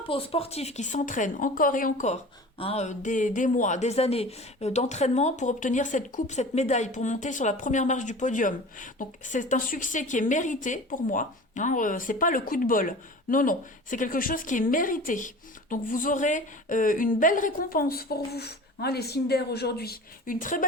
peu aux sportifs qui s'entraînent encore et encore. Hein, des mois, des années d'entraînement pour obtenir cette coupe, cette médaille, pour monter sur la première marche du podium. Donc, c'est un succès qui est mérité pour moi. Hein, c'est pas le coup de bol. Non, non. C'est quelque chose qui est mérité. Donc, vous aurez une belle récompense pour vous. Hein, les signes d'air aujourd'hui. Une très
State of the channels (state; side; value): normal; both; correlation 0.39